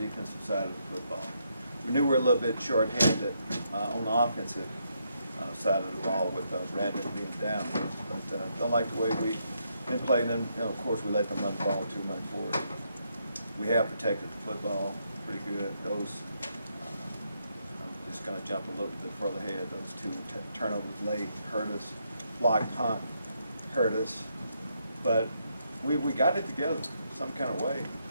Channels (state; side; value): inverted; both; correlation -0.77